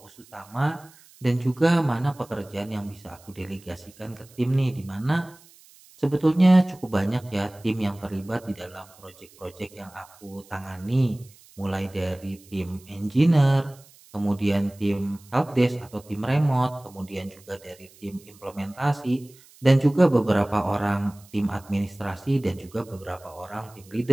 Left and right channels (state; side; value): noise; right; hiss, 25 dB below the sound